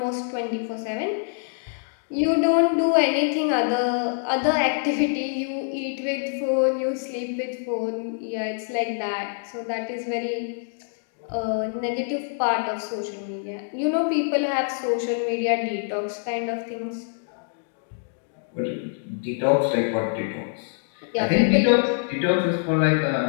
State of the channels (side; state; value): right; silent; digital silence